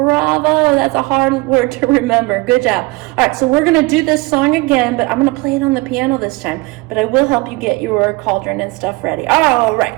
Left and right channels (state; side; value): quieter; left; 24.2 dB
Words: that's a hard word to remember. Good job. All right, so we're going to do this song again, but I'm going to play it on the piano this time. But I will help you get your cauldron and stuff ready. All